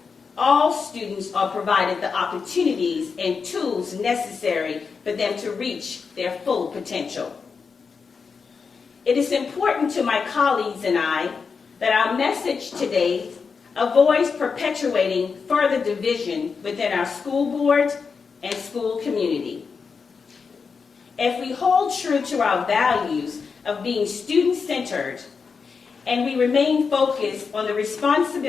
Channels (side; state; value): right; quieter; 5.4 dB